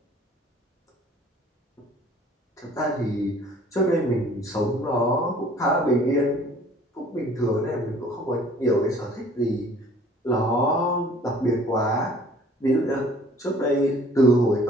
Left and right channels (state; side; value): normal; both; correlation 0.53